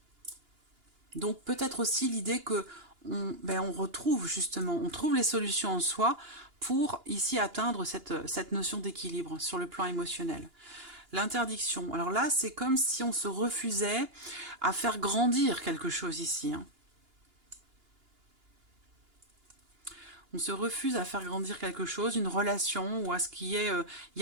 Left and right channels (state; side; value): late; left; 2.9 ms